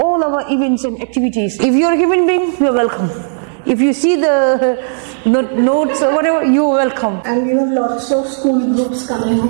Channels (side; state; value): left; silent; digital silence